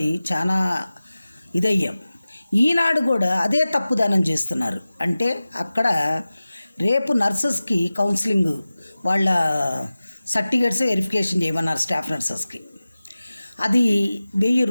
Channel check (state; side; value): inverted; both; correlation -0.96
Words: చాలా ఇదయ్యాం. ఈనాడు కూడా అదే తప్పుదానం చేస్తున్నారు. అంటే అక్కడ రేపు నర్సెస్కి కౌన్సిలింగ్ వాళ్ళ సర్టిఫికేట్స్ వెరిఫికేషన్ చేయమన్నారు స్టాఫ్ నర్సెస్కి. అది